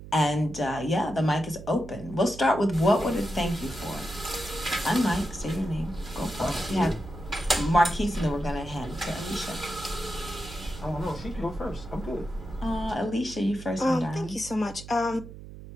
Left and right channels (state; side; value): noise; right; hum, 14 dB below the sound